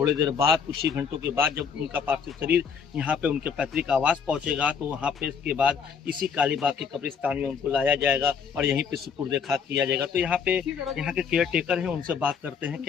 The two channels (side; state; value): right; quieter; 6.5 dB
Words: देर बाद, कुछ ही घंटों के बाद, जब उनका पार्थिव शरीर यहाँ पे उनके पैतृक आवास पहुँचेगा, तो वहाँ पे इसके बाद इसी कालीबाग के कब्रिस्तान में उनको लाया जाएगा और यहीं पे सुपुर्द खाक किया जाएगा। तो यहाँ के केयर टेकर हैं, उनसे बात करते हैं।